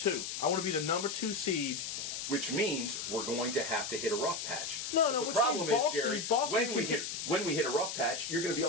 I want to be the number 2 seed. Which means we're going to have to hit a rough patch. No, But which the problem means is, Boston- Gary, Boston when we can- hit a rough patch, you're going to be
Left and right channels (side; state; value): left; noise; hiss, 5 dB below the sound